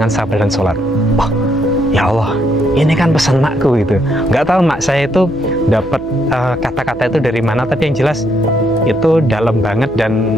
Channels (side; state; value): right; noise; hum, 19 dB below the sound